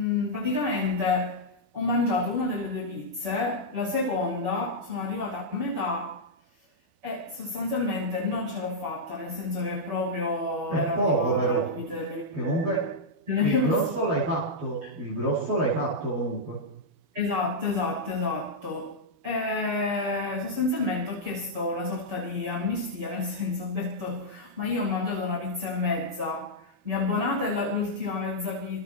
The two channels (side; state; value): left; late; 12 ms